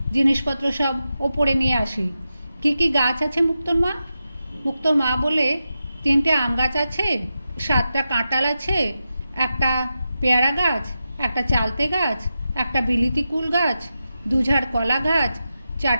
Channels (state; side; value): inverted; both; correlation -0.90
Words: জিনিসপত্র সব ওপরে নিয়ে আসি। কি কি গাছ আছে মুক্তোর মা? মুক্তোর মা বলে, 3টে আম গাছ আছে, 7টা কাঁঠাল আছে, একটা পেয়ারা গাছ, একটা চালতে গাছ, একটা বিলিতি কুল গাছ, 2 ঝাড় কলা গাছ,